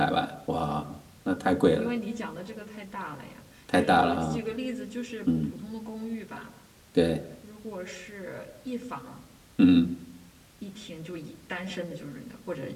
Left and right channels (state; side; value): identical; both; correlation 1.00